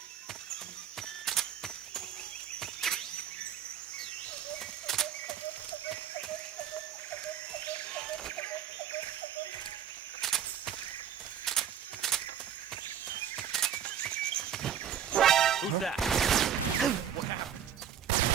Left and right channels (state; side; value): quieter; left; 9.1 dB